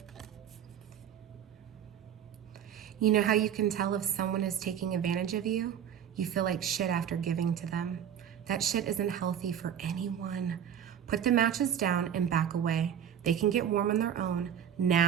You know how you can tell if someone is taking advantage of you? You feel like shit after giving to them. That shit isn't healthy for anyone. Put the matches down and back away. They can get warm on their own.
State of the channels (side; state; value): left; quieter; 9.1 dB